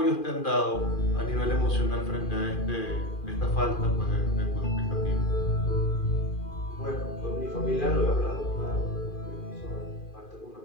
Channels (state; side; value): late; right; 2.4 ms